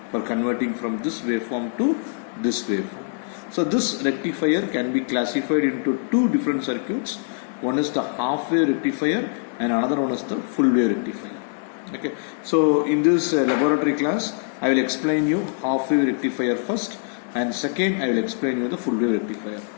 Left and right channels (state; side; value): silent; right; digital silence